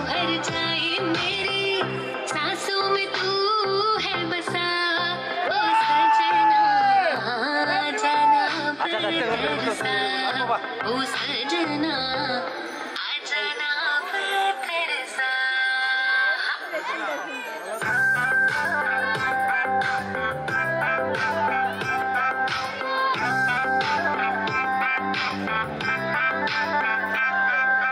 हर जाए। मेरी सांसों में तू है बसा ओ सजना, जाना बरसा ओ सजना, आजाना बरसा।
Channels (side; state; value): both; identical; correlation 1.00